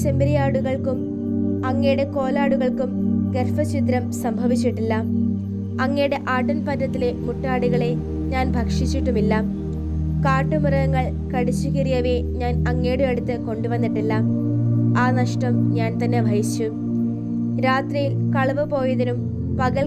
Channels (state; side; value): identical; both; correlation 1.00